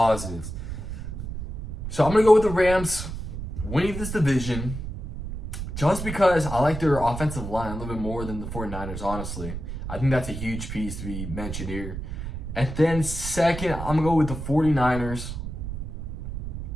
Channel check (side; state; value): right; noise; rumble, 7 dB below the sound